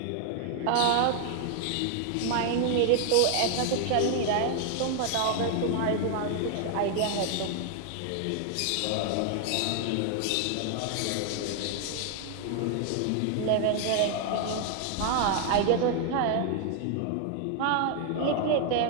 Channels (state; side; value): different; both; correlation 0.00